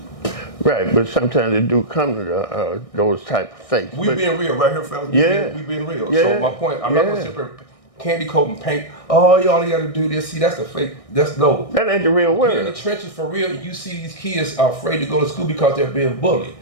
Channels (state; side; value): late; right; 1.6 ms